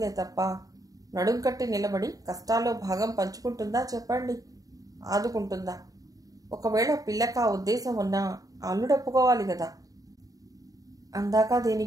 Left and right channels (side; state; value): left; late; 0.17 ms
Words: తప్ప నడుం కట్టి నిలబడి కష్టాల్లో భాగం పంచుకుంటుందా చెప్పండి? ఆదుకుంటుందా? ఒకవేళ పిల్లక ఉద్దేశం ఉన్నా అల్లుడప్పుకోవాలి కదా. అందాక